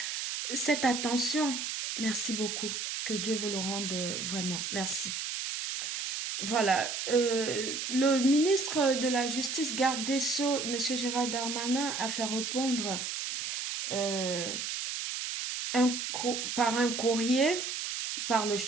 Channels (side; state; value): right; noise; hiss, 3 dB below the sound